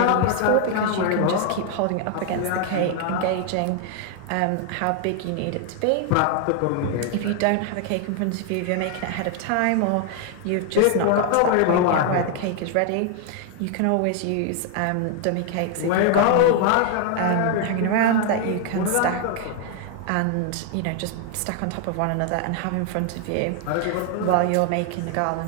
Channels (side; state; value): both; different; correlation 0.00